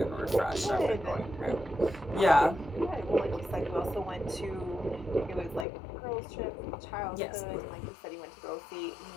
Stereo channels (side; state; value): right; drops out; at 5.7 s